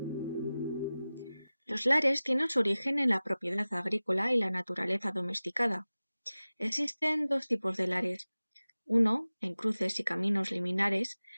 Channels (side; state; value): both; inverted; correlation -0.97